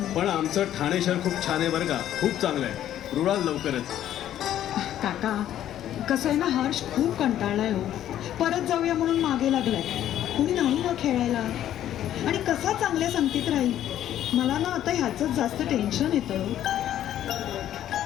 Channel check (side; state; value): right; quieter; 11.6 dB